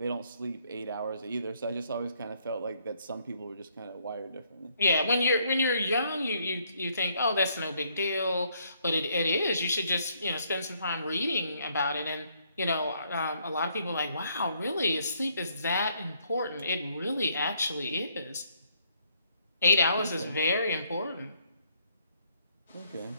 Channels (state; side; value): inverted; both; correlation -0.69